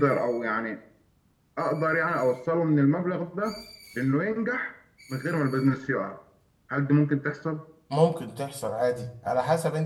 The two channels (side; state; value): both; identical; correlation 1.00